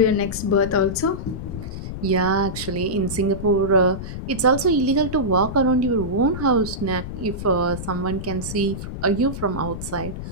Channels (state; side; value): noise; left; rumble, 8 dB below the sound